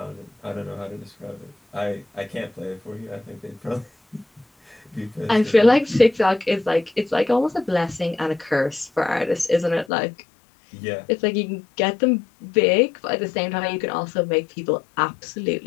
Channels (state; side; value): drops out; right; at 9.9 s